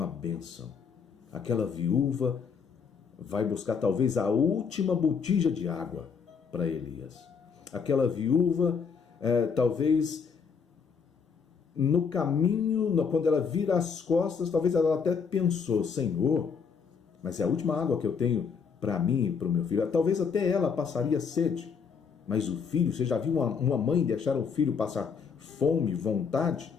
bênção. Aquela viúva vai buscar talvez a última botija de água para Elias. Aquela viúva, talvez no caminho, quando ela vira as costas, talvez ela até pensou, Senhor, mas é a última água que eu tenho para mim e para o meu filho. Talvez até ela passaria sede, mas o filho, você já viu uma mãe deixar o filho passar fome, vontade?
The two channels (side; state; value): right; quieter; 6.1 dB